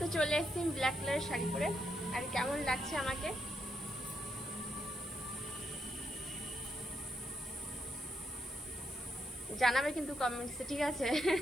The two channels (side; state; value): left; noise; hiss, 20 dB below the sound